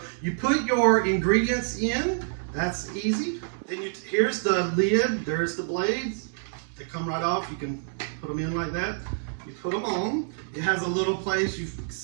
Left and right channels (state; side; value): silent; left; digital silence